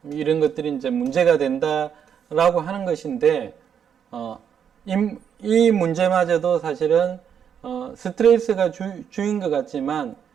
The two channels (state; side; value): quieter; left; 8.1 dB